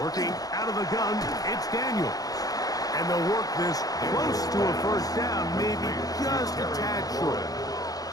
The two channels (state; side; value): late; right; 0.18 ms